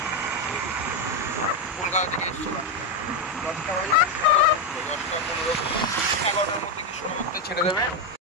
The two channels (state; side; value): normal; both; correlation 0.06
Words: কলকাতা থেকে এসেছিলাম 10টা 15 11টার মধ্যে কৃষ্ণনগরতে ছেড়ে দেবে।